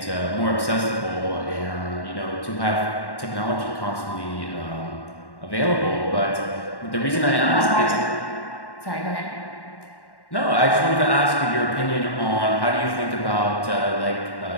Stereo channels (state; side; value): late; right; 1.1 ms